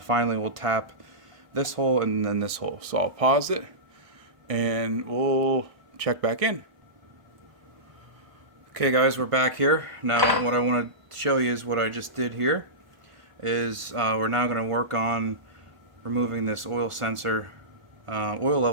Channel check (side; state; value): left; late; 1.5 ms